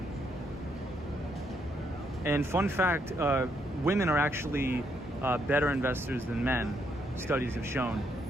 And fun fact, women are actually better investors than men, studies have shown.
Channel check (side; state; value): both; normal; correlation 0.75